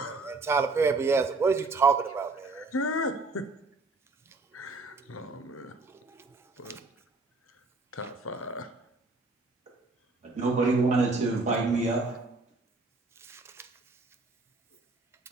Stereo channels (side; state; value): left; quieter; 3.5 dB